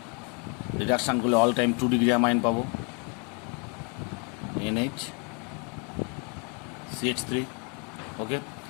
রিডাকশান করলে অল টাইম 2 ডিগ্রি অ্যামাইন পাবো, NaCH3। ওকে,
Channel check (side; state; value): right; quieter; 35.6 dB